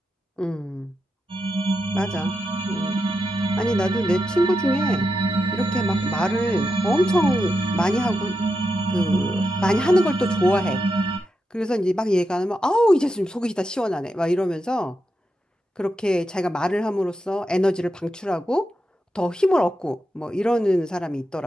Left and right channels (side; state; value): both; normal; correlation 0.87